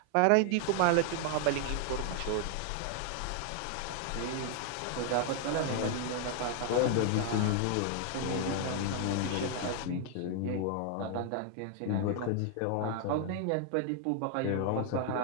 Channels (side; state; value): both; different; correlation 0.00